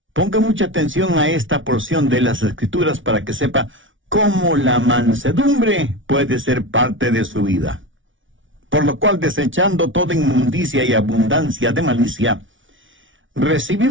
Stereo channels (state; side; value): late; left; 0.56 ms